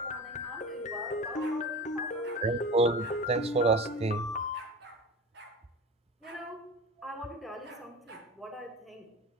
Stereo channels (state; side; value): normal; both; correlation 0.32